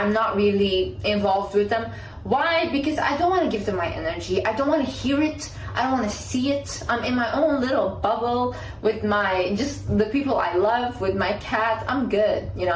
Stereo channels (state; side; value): identical; both; correlation 1.00